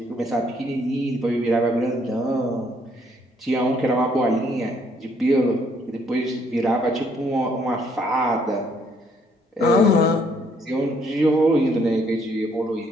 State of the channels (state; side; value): normal; both; correlation 0.67